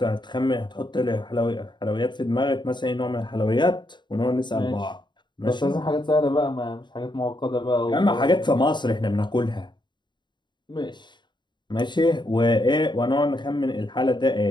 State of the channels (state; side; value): late; right; 0.22 ms